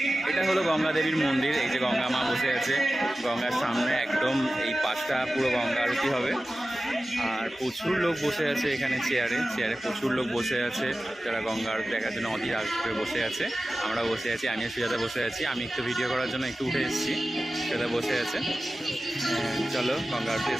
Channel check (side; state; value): both; normal; correlation 0.95